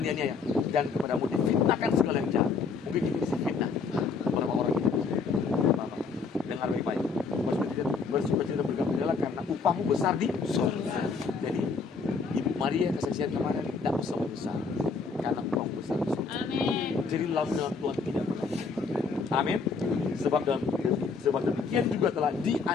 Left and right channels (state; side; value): quieter; right; 4.9 dB